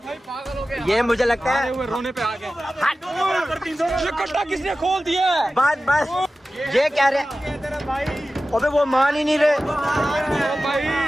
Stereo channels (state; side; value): normal; both; correlation 0.95